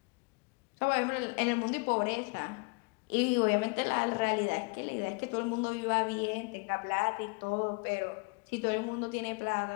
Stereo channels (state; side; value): quieter; right; 32.0 dB